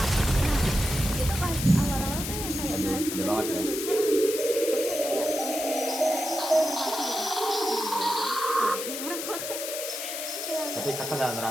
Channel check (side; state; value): left; noise; hiss, 5 dB below the sound